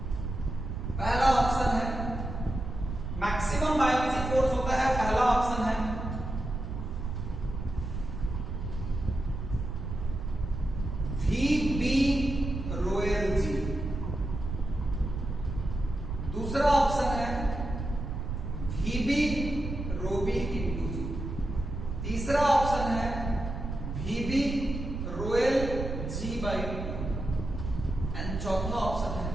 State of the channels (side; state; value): right; noise; rumble, 5 dB below the sound